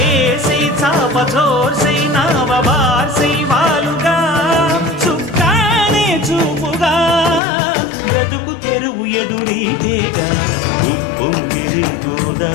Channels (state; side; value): drops out; right; at 7.4 s